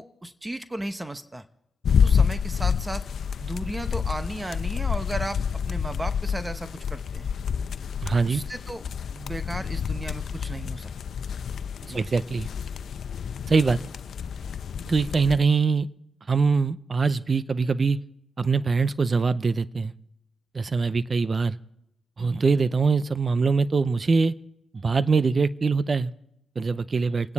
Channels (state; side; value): normal; both; correlation 0.85